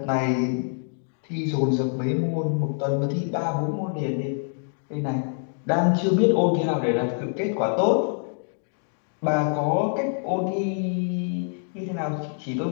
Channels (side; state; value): right; silent; 58 dB below the other